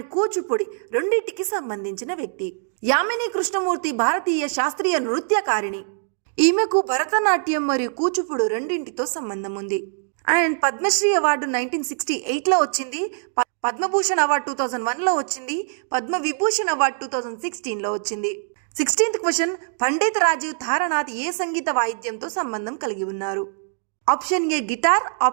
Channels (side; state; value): left; silent; digital silence